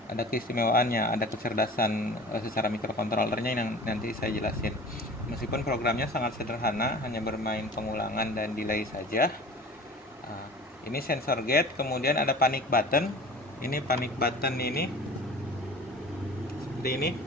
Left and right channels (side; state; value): both; normal; correlation 0.41